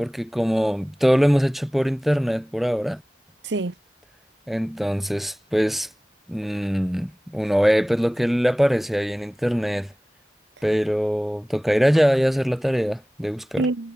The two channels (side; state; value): both; normal; correlation 0.98